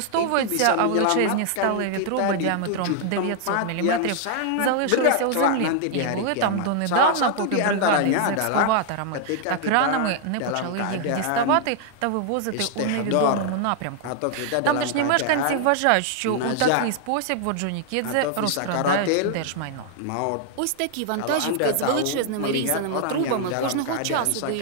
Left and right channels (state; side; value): different; both; correlation 0.00